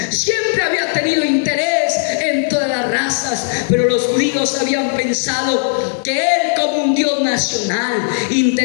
Siempre había tenido interés en todas las razas, pero los judíos habían pensado que Él, como un Dios nacional,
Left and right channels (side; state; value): right; silent; digital silence